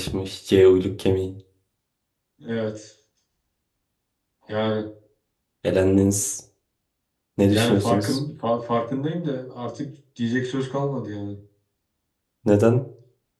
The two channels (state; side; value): identical; both; correlation 1.00